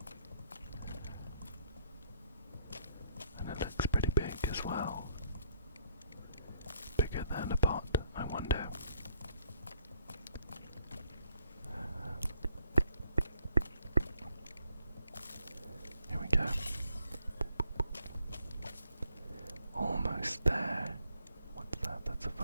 And it looks pretty big as well. Bigger than a pot, I wonder. Here we go. Almost there. What's that? That's a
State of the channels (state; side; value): inverted; both; correlation -0.67